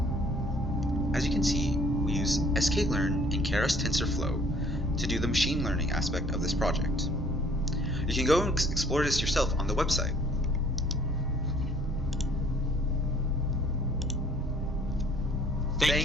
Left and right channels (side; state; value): both; normal; correlation 0.57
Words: As you can see, we use sklearn and Keras TensorFlow to do the machine learning aspect of this project. You can go and explore this yourself on the website.